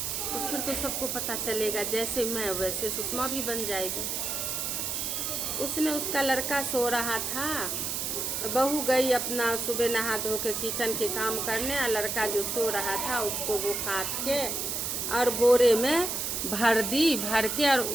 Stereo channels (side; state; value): right; noise; hiss, 2 dB below the sound